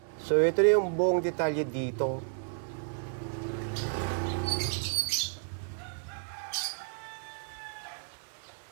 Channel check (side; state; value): left; silent; digital silence